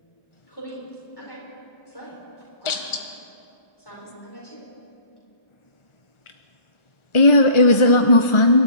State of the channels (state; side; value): late; right; 1.4 ms